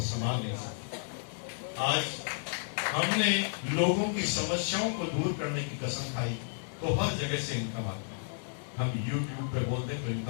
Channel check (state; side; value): silent; right; 56 dB below the other